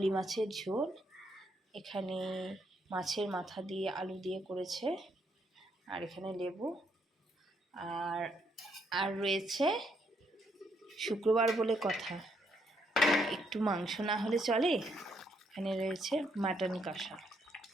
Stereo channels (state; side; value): normal; both; correlation 0.74